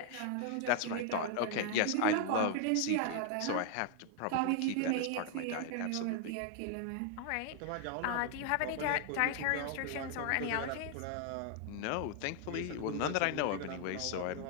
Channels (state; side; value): different; both; correlation 0.00